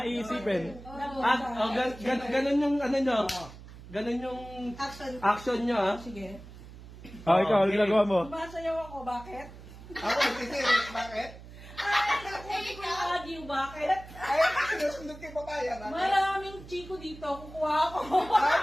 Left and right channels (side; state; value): right; noise; hum, 16 dB below the sound